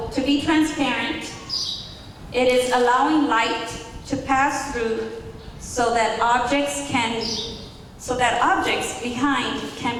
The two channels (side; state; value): both; identical; correlation 1.00